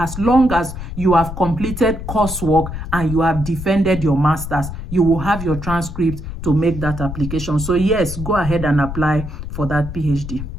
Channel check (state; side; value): noise; left; rumble, 8 dB below the sound